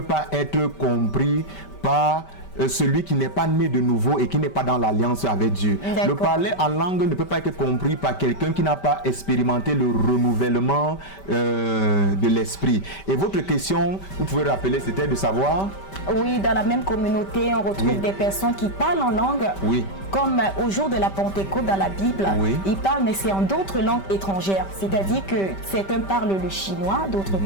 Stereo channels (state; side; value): late; right; 5.2 ms